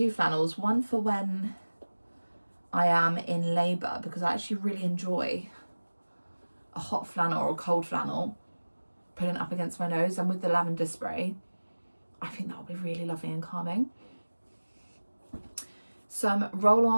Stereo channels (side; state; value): both; inverted; correlation -1.00